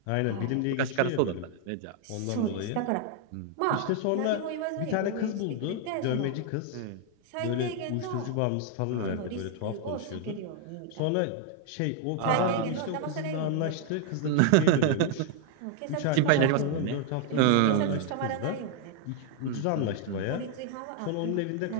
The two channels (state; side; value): different; both; correlation 0.00